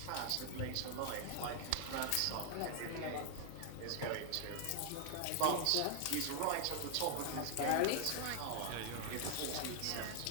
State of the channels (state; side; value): different; both; correlation 0.00